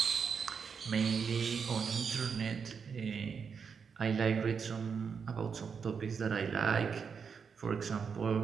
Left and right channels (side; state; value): left; quieter; 6.2 dB